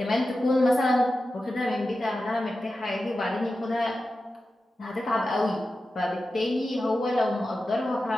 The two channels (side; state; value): both; normal; correlation 0.93